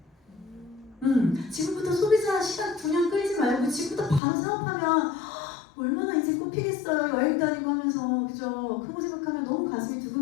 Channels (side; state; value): right; drops out; at 4.2 s